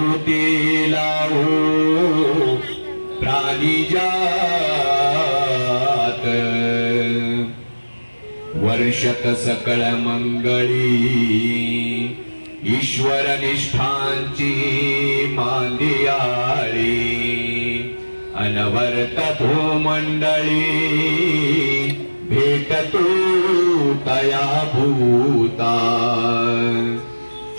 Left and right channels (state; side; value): inverted; both; correlation -1.00